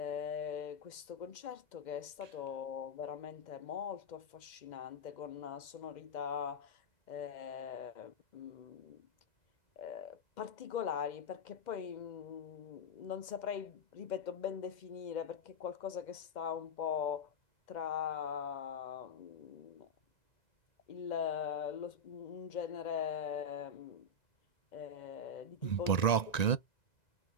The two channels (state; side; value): late; right; 1.9 ms